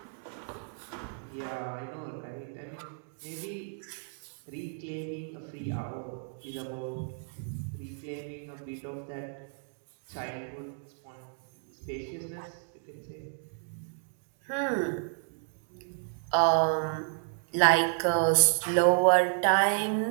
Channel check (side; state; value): left; silent; 57 dB below the other